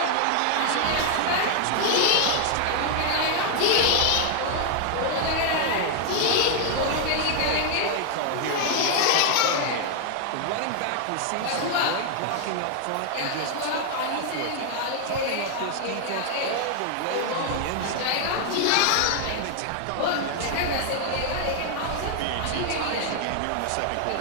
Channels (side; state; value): both; different; correlation 0.00